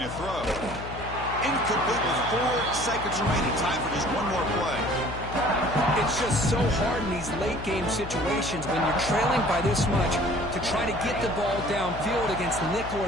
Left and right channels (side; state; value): left; noise; hum, 10 dB below the sound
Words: to throw. Incomplete with 4 seconds remaining. Time for just one more play. It's just so hard in these late-game situations when you're trailing by this much to try to get the ball downfield against nickel